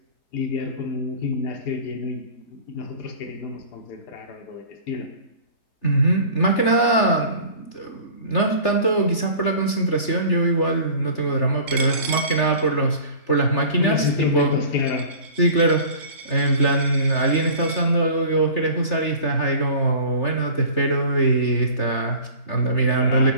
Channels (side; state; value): right; late; 3.3 ms